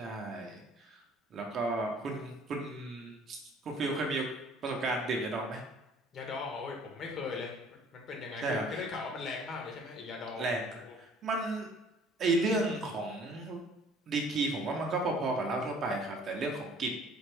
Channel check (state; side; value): normal; both; correlation 0.54